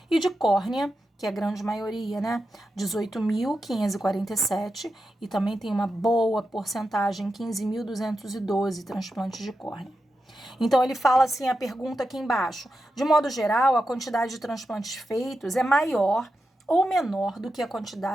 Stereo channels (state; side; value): normal; both; correlation 0.89